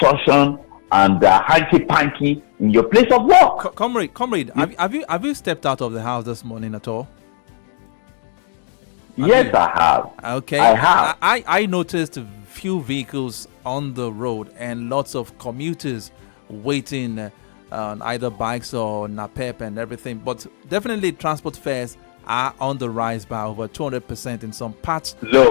and hanky-panky in your place of work. Comrade, have you stepped out of the house this morning at all? Yes, I have. Okay. I have. I noticed a few vehicles on the road and lots of commuters waiting on either bikes or NAPEP and everything. But definitely transport fares are on the rise by over 200% in some parts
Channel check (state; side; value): silent; right; 67 dB below the other